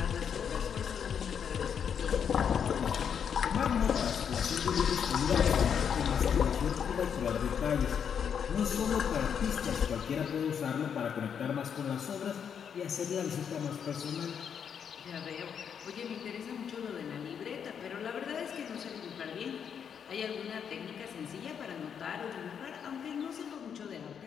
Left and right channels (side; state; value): right; quieter; 7.6 dB